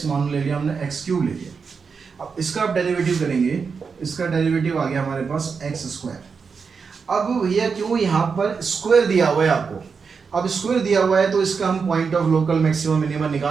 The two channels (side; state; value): left; quieter; 5.5 dB